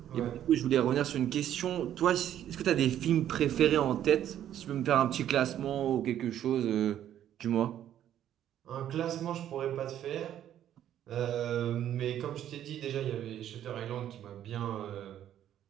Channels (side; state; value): left; quieter; 11.0 dB